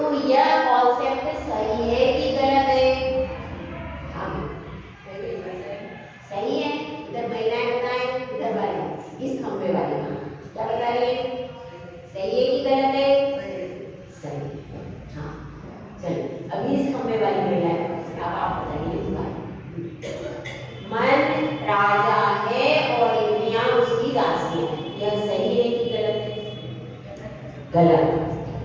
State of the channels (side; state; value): both; identical; correlation 1.00